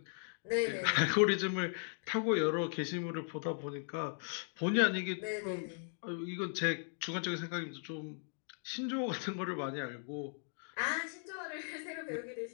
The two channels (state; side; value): silent; right; 53 dB below the other